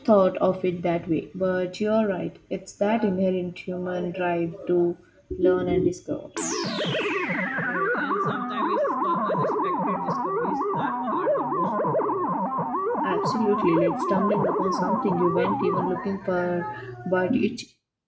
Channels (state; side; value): identical; both; correlation 1.00